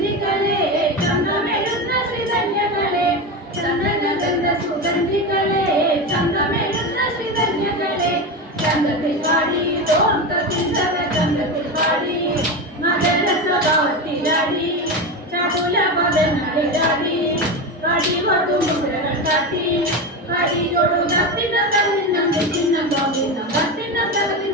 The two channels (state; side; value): normal; both; correlation 0.19